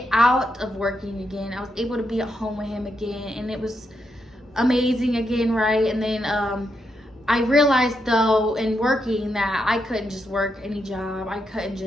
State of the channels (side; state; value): both; normal; correlation 0.82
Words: out of working again. I was able to be at home with him again, and it was amazing again, right? And then I realized though in working that I couldn't just work any job. I couldn't